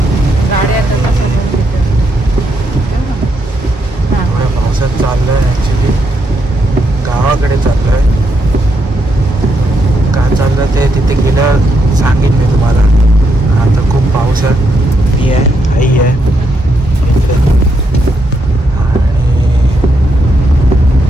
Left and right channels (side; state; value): both; normal; correlation 0.79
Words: थोड्या पावसात चाललोय. ॲक्च्युली गावाकडे चाललोय. का चाललं ते तिथे गेल्यावर सांगेन मी तुम्हाला. आता खूप पाऊस आहे. मी आहे, आई आहे इकडे. आणि